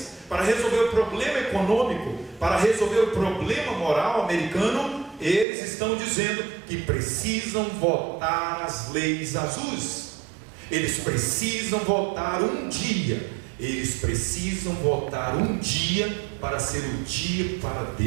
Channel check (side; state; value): left; drops out; at 5.5 s